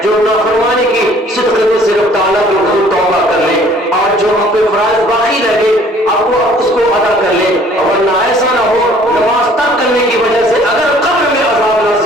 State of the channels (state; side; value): normal; both; correlation 0.56